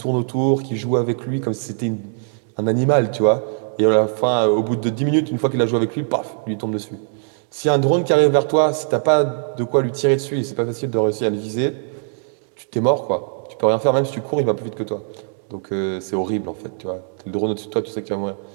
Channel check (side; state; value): left; silent; 65 dB below the other